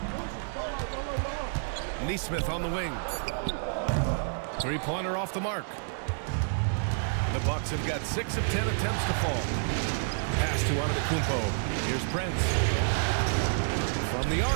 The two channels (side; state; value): left; silent; digital silence